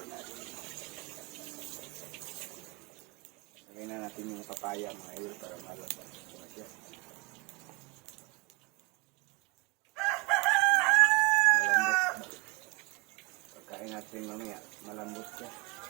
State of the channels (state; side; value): quieter; left; 28.0 dB